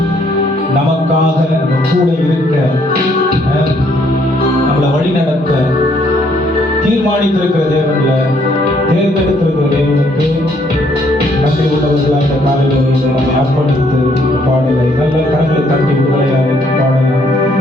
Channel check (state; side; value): normal; both; correlation 0.68